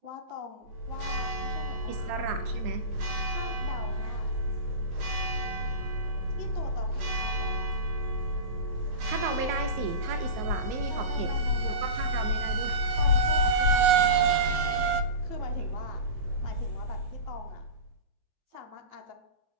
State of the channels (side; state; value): left; late; 19 ms